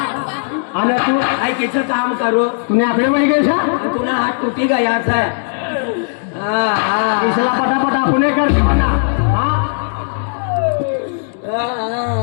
आणि तू आई किती काम करो तुम्ही आकडे वळी गेसा तुला हात तुटी गया है. इसला पटापट आपण कर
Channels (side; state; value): right; silent; digital silence